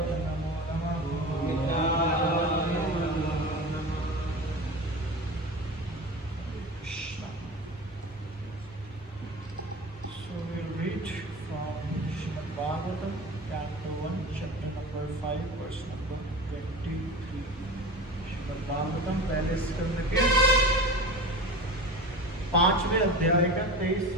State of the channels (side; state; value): both; normal; correlation 0.31